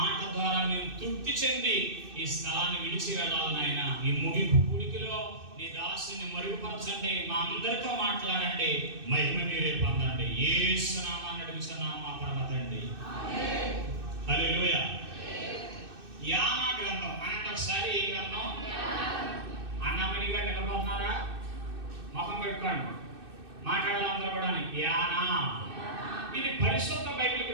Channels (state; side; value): late; left; 2.6 ms